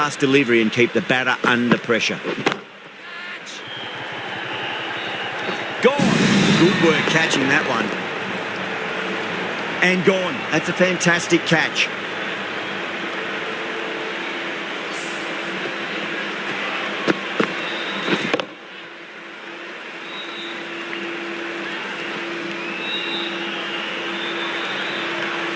delivery and keep the batter under pressure. Gone. Good work catching that one. And gone. That's a fantastic catch.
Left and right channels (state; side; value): identical; both; correlation 1.00